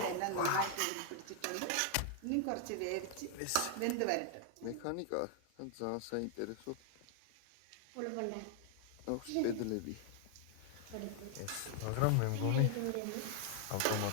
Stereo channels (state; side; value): different; both; correlation 0.00